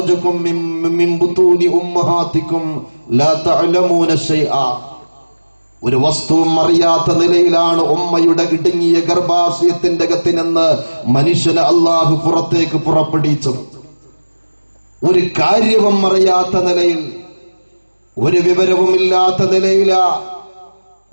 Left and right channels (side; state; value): both; inverted; correlation -1.00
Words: മിൻ ബുതൂനി ഉമ്മഹാതികും ലാ തഅലമൂന ശൈആ. ഒരു വസ്തുവും അറിയാത്ത നിലയിലാണ് ഉമ്മയുടെ ഇടുങ്ങിയ ഗർഭാശയത്തിന്റെ അകത്ത് നിന്ന് മനുഷ്യനെ അല്ലാഹു പുറത്തേക്ക് പുറപ്പെടുവിച്ചത്. ഒരു കാര്യവും അറിയാത്ത നിലയിൽ, ഒരു വിവരവുമില്ലാത്ത നിലയിലാ